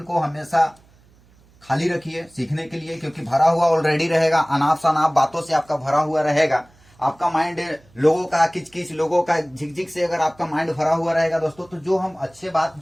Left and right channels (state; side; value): noise; right; hum, 29 dB below the sound